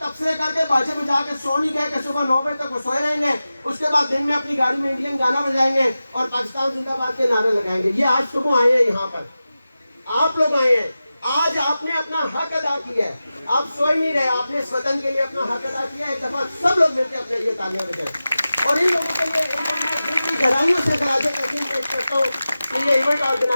کر کے باجے بجا کے سو نہیں گئے کہ صبح 9 بجے تک وہ سوئے رہیں گے, اس کے بعد دن میں اپنی گاڑی میں انڈین گانا بجائیں گے اور پاکستان زندہ باد کے نعرے لگائیں گے. یہ آج صبح آئے ہیں یہاں پر, آپ لوگ آئے ہیں, آج آپ نے اپنا حق ادا کیا ہے. آپ سوئے نہیں رہے, آپ نے اس وطن کے لیے اپنا حق ادا کیا ہے. ایک دفعہ سب لوگ مل کے اپنے لیے تالیاں بجائیں. اور ان لوگوں کے لیے دل کی گہرائیوں سے خراج تحسین پیش کرتا ہوں کہ یہ ایونٹ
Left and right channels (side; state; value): both; inverted; correlation -0.94